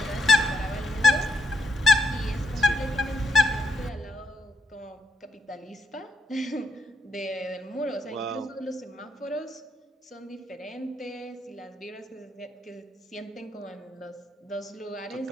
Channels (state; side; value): normal; both; correlation 0.79